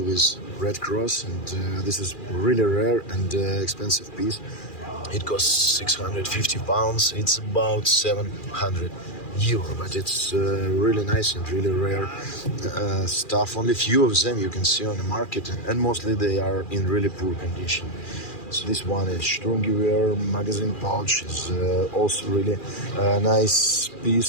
with red cross, and this is really rare and expensive piece. It costs 650 pounds. It's about 700 euro, but it's really nice and really rare stuff. Only few of them you can see on the market, and mostly they are in really poor condition. So this one is Sturmgewehr magazine pouch, is also really nice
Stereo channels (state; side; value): late; right; 2.4 ms